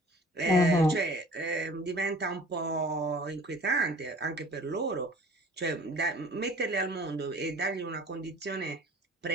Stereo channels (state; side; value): normal; both; correlation 0.48